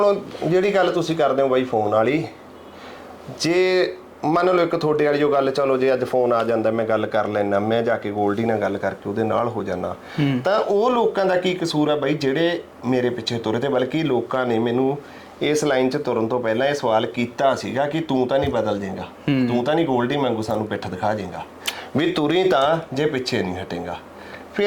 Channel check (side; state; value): both; identical; correlation 1.00